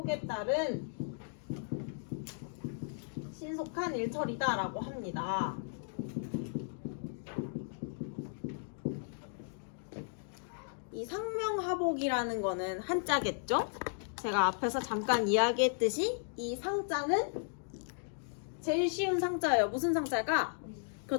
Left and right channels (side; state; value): right; silent; digital silence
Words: 따른 신속한 일 처리다라고 합니다. 이 상명하복이라는 거는 한자겠죠? 제가 앞에서 잠깐 이야기했듯이 이 상자는 제일 쉬운 상자예요. 무슨 상자가?